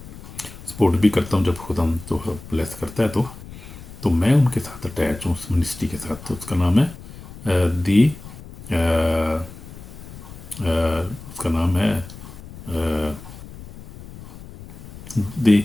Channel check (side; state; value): left; noise; rumble, 15 dB below the sound